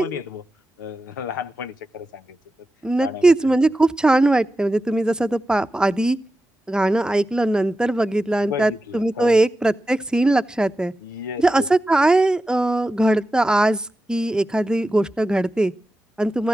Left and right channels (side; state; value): both; normal; correlation 0.92